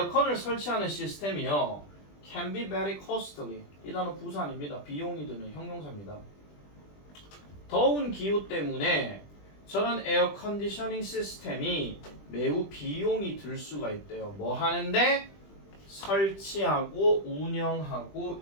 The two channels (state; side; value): late; right; 20 ms